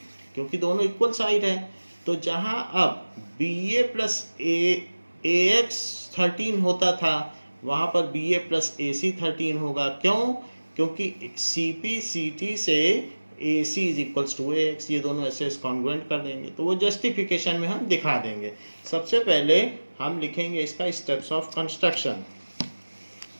क्योंकि दोनों इक्वल साइड है। तो जहां अब BA प्लस AX 13 होता था, वहां पर BA प्लस AC 13 होगा। क्यों? क्योंकि CP CT से AC is equals to AX, ये दोनों ऐसे कॉन्ग्रुएंट कर देंगे। तो वो जस्टिफिकेशन में हम दिखा देंगे। सबसे पहले हम लिखेंगे इसका steps of construction.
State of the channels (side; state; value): both; inverted; correlation -1.00